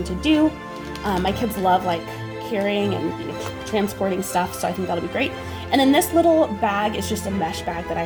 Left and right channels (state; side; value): identical; both; correlation 1.00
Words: to do. My kids love like carrying and transporting stuff, so I think that'll be great. And then this little bag is just a mesh bag that